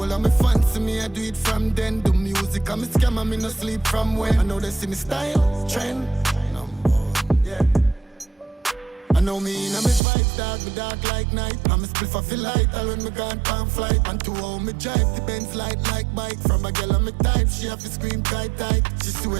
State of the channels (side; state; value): left; drops out; at 10.0 s